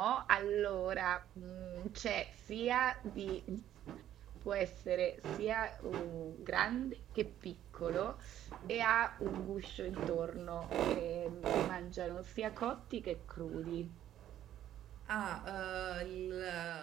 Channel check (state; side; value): quieter; left; 11.7 dB